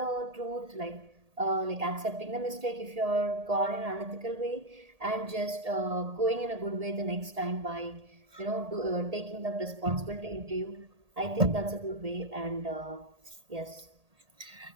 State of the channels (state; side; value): late; left; 1.8 ms